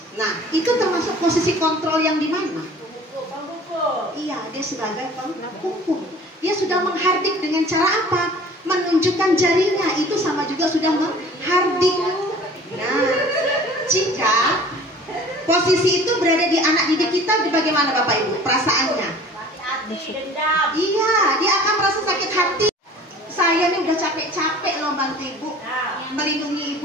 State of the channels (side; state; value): both; normal; correlation 0.47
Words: Nah, itu termasuk posisi kontrol yang di mana? Iya, dia sebagai penghukum. Dia sudah menghardik dengan cara apa? Menunjukkan jarinya, itu sama juga sudah menghardik. Nah, jika posisi itu berada di anak didik kita, bagaimana Bapak Ibu perasaannya? Iya, dia akan merasa sakit hati. Saya nih udah capek-capek loh bantu Ibu, melindungi